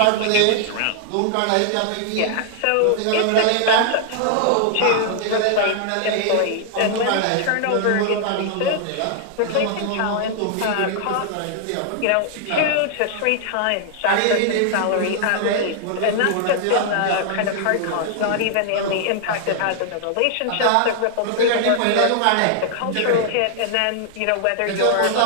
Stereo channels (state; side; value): different; both; correlation -0.01